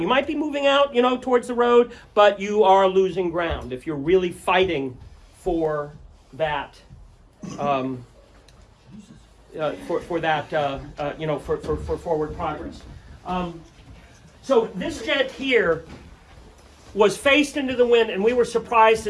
You might be moving out, towards the road, but you are losing ground if you're really fighting for that, for forward progress. So this jet here was faced into the wind, and we were surprised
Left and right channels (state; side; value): identical; both; correlation 1.00